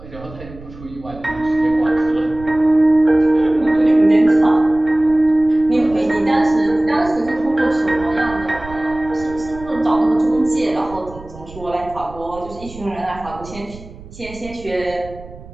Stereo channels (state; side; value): noise; right; rumble, 17 dB below the sound